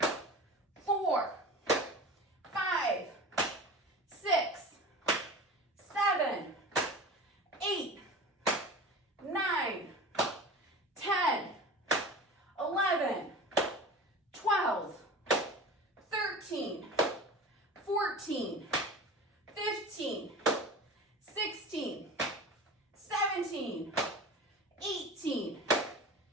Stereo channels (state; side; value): normal; both; correlation 0.35